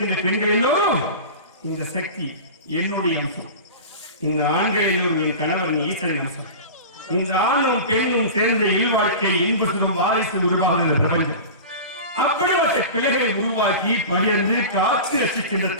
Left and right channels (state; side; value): inverted; both; correlation -0.32